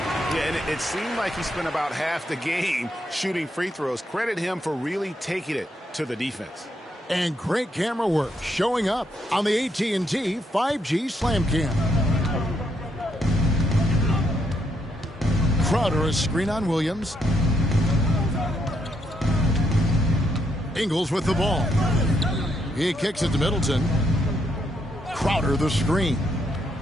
Yeah, and it seemed like he spent about half the game shooting free throws. Credit him for really taking it to the defense. And great camera work showing up on the AT&T 5G Slam Cam. Crowder, a screen on Williams. Ingles with the ball. He kicks it to Middleton. Crowder the screen.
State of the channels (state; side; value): normal; both; correlation 0.77